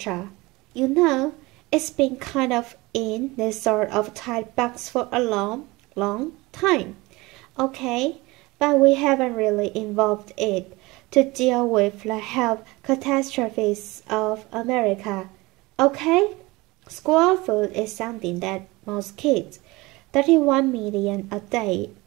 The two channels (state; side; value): quieter; left; 22.4 dB